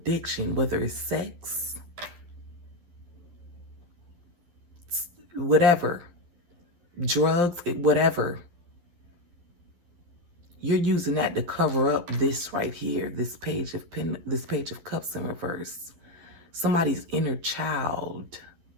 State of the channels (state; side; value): late; left; 11 ms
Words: whether it's sex, whatever, drugs, whatever. You're using that to cover up this right here, this page of Cups in reverse. Somebody's inner child.